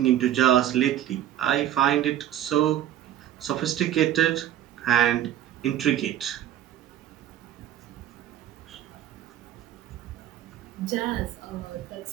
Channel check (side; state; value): left; quieter; 11.8 dB